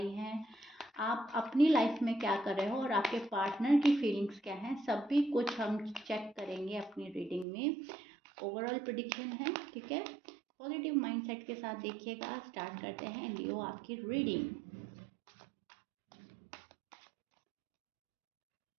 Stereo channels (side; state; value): left; drops out; at 7.5 s